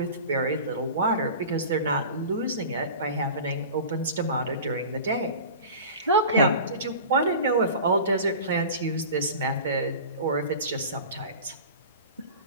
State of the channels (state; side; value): inverted; both; correlation -0.36